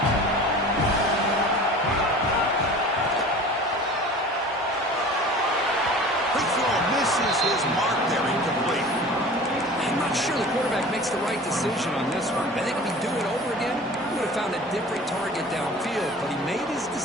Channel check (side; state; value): both; normal; correlation 0.41